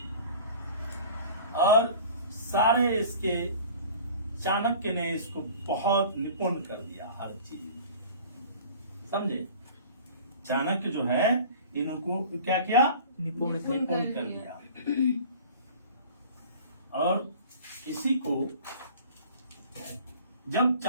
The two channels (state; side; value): inverted; both; correlation -0.44